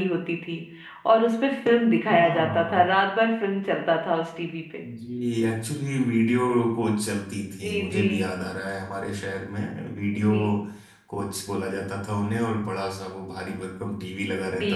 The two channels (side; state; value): both; identical; correlation 1.00